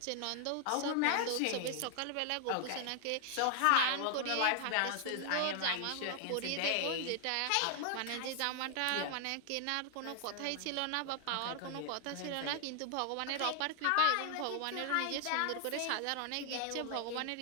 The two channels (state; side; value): different; both; correlation 0.00